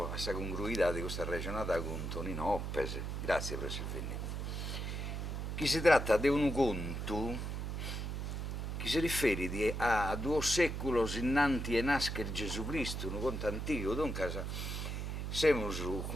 a questa congruità di questa ragionata con Tonino Oppes. Grazie per Silvini. Chi si tratta di un conto che si riferisce a 2 secoli innanti a nascere Gesù Cristo, un conto antico, dunque siamo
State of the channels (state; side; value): noise; right; hum, 3 dB below the sound